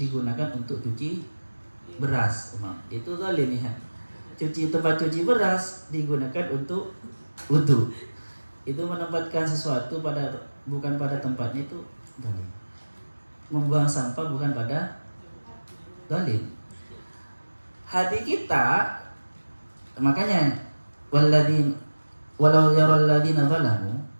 untuk cuci beras, itu zalim ya. Tempat cuci beras digunakan untuk wudu, itu menempatkan sesuatu bukan pada tempatnya, itu zalim. Membuang sampah bukan pada zalim. Hati kita, makanya walau yaral ladzina zalamu,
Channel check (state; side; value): inverted; both; correlation -1.00